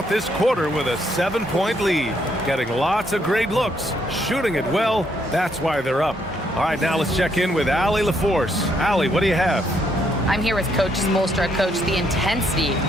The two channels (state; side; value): normal; both; correlation 0.73